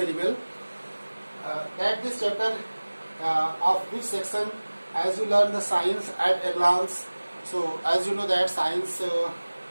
well that this chapter of which section, as you learn the science at a glance. So as you know that science,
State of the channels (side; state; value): both; inverted; correlation -1.00